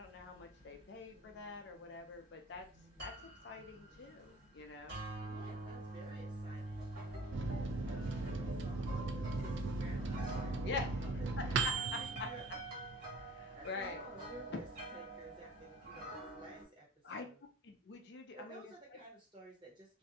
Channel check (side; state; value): both; normal; correlation 0.48